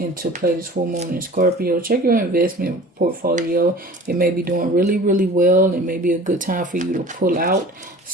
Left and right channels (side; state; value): both; normal; correlation 0.43